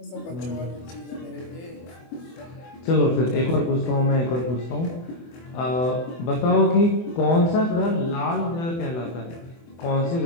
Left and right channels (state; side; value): late; right; 24 ms